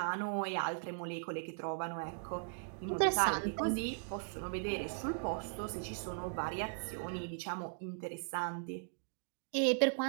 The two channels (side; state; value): left; silent; digital silence